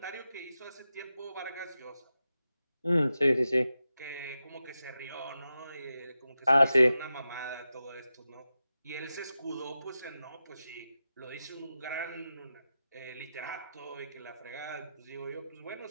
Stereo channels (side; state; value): both; inverted; correlation -0.91